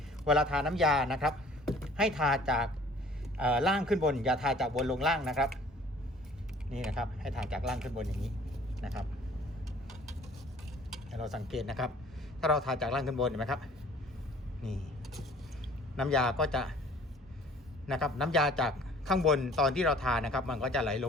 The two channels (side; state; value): both; normal; correlation 0.52